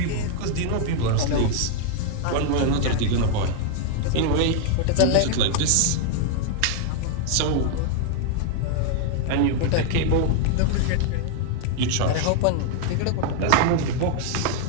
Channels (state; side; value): different; both; correlation 0.00